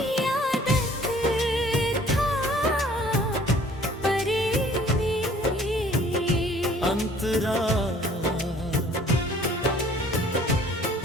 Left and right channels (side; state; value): both; normal; correlation 0.54